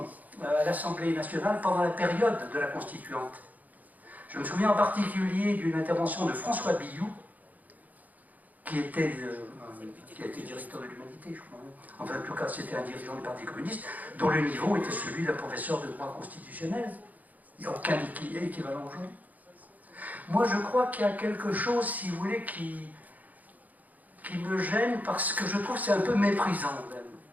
à l'Assemblée nationale pendant la période de la constituante. Je me souviens en particulier d'une intervention de François Billoux, qui était directeur de l'Humanité, je crois. Enfin, en tout cas, c'était un dirigeant du Parti communiste, dont le niveau était celui d'un professeur de droit constitutionnel. Il n'y a aucun équivalent aujourd'hui. Moi, je crois qu'il y a quelque chose, si vous voulez, qui me gêne, parce que je trouve que c'est un peu méprisant, même,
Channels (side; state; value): left; late; 0.080 ms